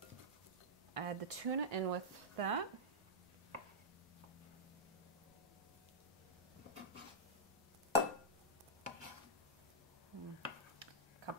add the tuna in with that.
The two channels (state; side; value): normal; both; correlation -0.10